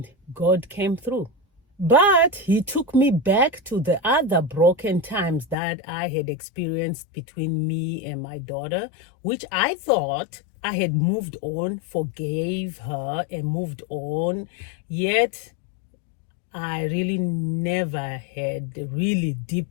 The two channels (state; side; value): drops out; right; at 5.6 s